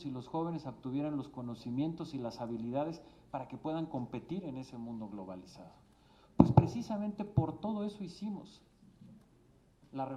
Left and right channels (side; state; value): both; identical; correlation 1.00